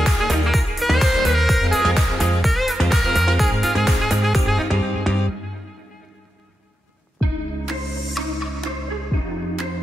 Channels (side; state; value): both; normal; correlation 0.89